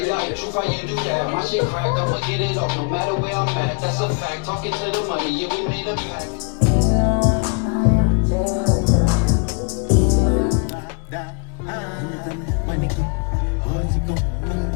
like, truth, how you do that? My shit crack, I'ma get it off no matter where I'm at. That's a fact. Talking to the money, yeah, we made a pact.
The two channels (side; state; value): right; quieter; 39.2 dB